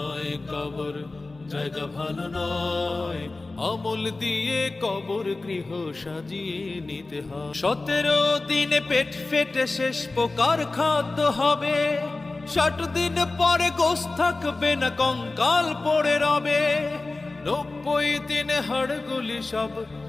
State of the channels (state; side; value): quieter; right; 3.3 dB